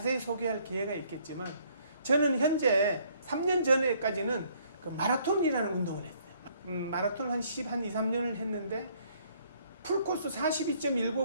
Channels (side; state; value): both; inverted; correlation -0.63